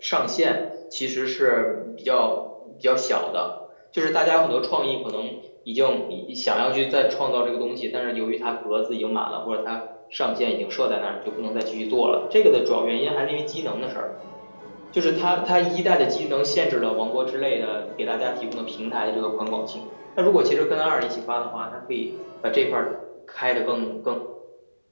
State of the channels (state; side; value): inverted; both; correlation -1.00